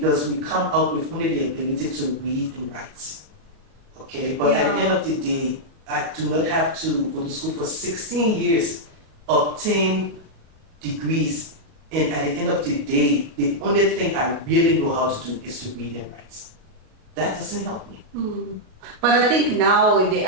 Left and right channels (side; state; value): left; late; 38 ms